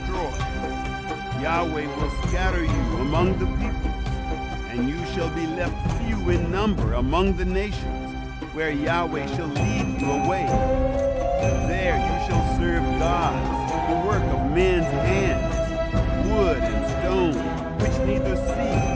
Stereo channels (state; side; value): identical; both; correlation 1.00